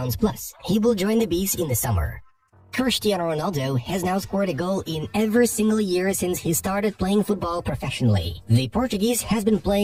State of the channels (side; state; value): both; identical; correlation 1.00